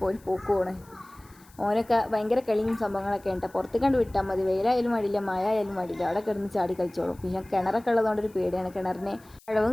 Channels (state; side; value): noise; left; hiss, 27 dB below the sound